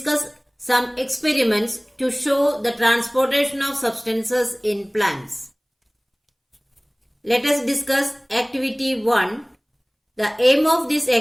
some experiments to show the transportation of substances in plants. Let us discuss activity 1. The aim of this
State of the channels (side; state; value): both; identical; correlation 1.00